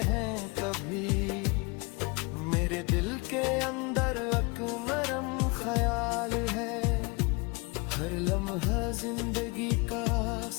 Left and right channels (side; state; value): right; quieter; 28.6 dB